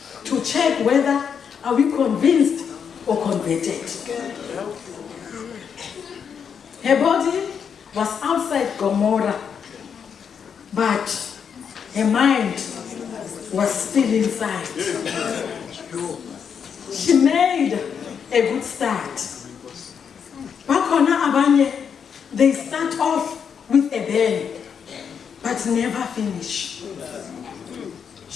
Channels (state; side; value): quieter; right; 7.1 dB